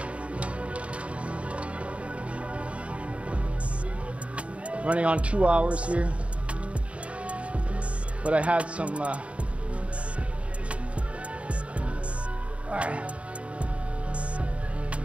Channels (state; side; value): late; left; 0.062 ms